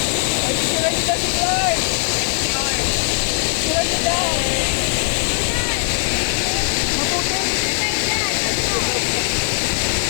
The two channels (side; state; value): right; silent; digital silence